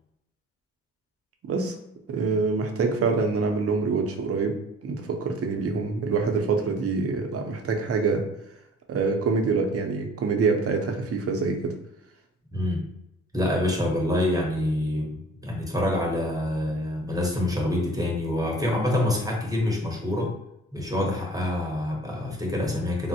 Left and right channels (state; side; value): normal; both; correlation 0.48